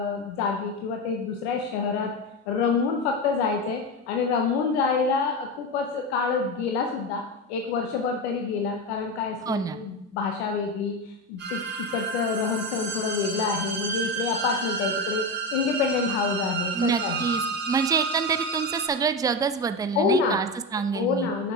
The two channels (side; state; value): both; normal; correlation 0.17